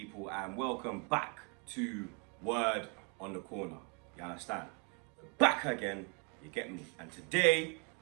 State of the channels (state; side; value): quieter; left; 33.6 dB